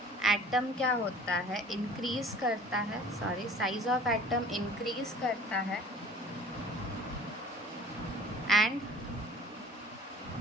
atom क्या होता है इंक्रीज़ करता है. Sorry, size of atom increase करता है and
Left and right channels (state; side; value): normal; both; correlation 0.48